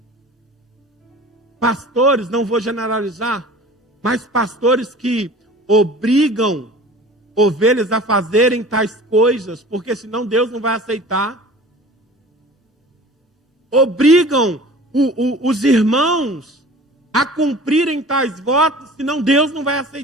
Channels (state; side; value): normal; both; correlation 0.43